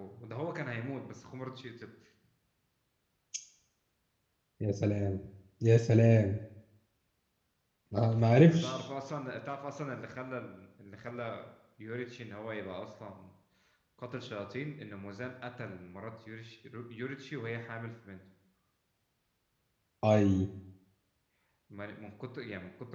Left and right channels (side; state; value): both; identical; correlation 1.00